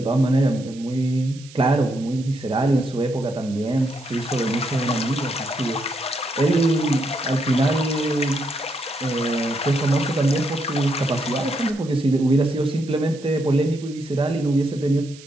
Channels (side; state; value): right; noise; hiss, 21 dB below the sound